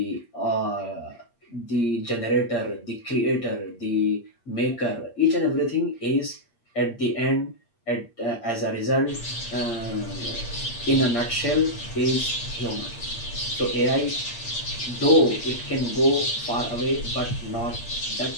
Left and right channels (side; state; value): right; late; 8.6 ms